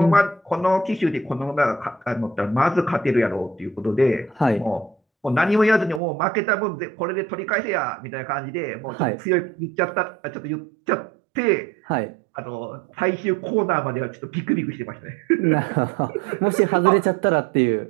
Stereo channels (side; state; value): left; drops out; at 6.0 s